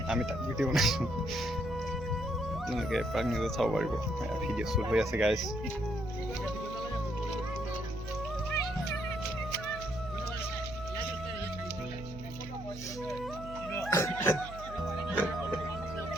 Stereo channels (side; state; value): right; noise; hum, 12 dB below the sound